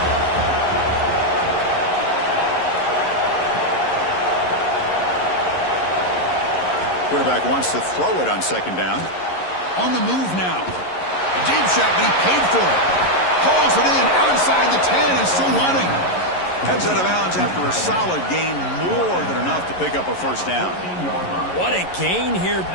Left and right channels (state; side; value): late; right; 11 ms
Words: Quarterback wants to throw it on second down. On the move now. A deep shot, but he paid for it. Hauls it in outside the 10 and still running. Heads out of bounds after a solid gain, more than enough to pick up a first down. What a gain here.